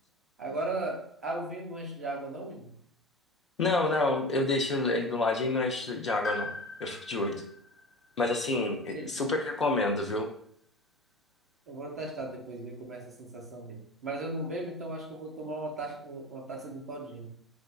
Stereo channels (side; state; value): both; normal; correlation 0.34